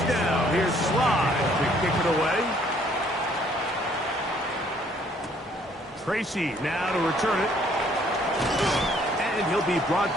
here's Slide to kick it away. Tracy now to return it. And he'll be brought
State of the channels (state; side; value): normal; both; correlation 0.63